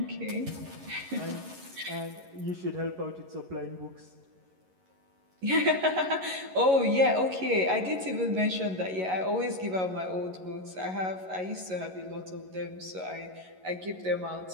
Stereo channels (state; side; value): late; left; 11 ms